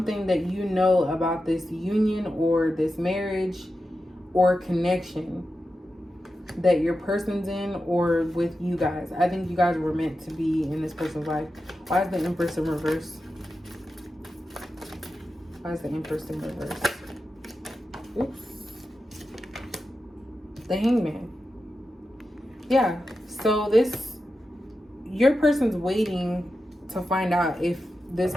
that you know about this union or this marriage or connection that your person's in or with you guys. I think you guys were meant to be in this person's life. Why is the Empress in reverse? Why is the Empress in reverse? Oops. The Hangman. Yeah. So your person's waiting to find out if this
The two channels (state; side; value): normal; both; correlation 0.91